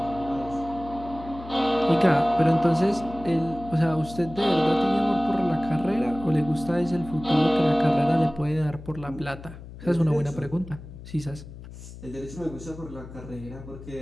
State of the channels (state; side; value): noise; left; hum, 15 dB below the sound